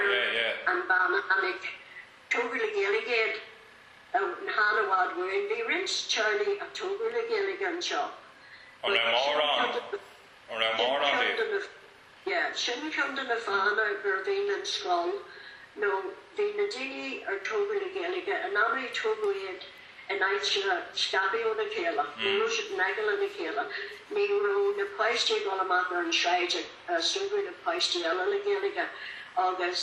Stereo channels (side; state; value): both; identical; correlation 1.00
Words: and Bannanig. Toby the Gaeilge out in Hanawad were in the rinse Charlie of Toby the Gaeilge shop. Or a moron. Yeah, shouldn't come to the fan or Bervin and Skull. No, the Nadini or Toby the Gaeilge, and now we Toby and I scabbie on the chéile, Russian Nagel on the chéile. Nero, the Paisty Golamaka and Shide, Super the Paisty Ella the Gaeilge,